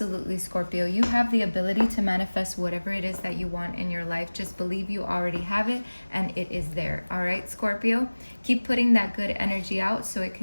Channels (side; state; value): both; inverted; correlation -1.00